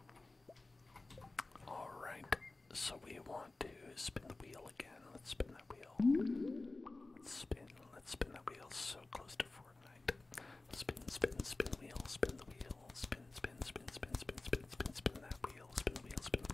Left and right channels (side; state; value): right; quieter; 3.2 dB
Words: Alright, so we want to spin the wheel again. Let's spin that wheel. Let's spin that wheel so close to Fortnite. Spin, spin, spin wheel, spin the wheel, spin, spin, spin, spin, spin, spin, spin, spin that wheel, spin the wheel, spin the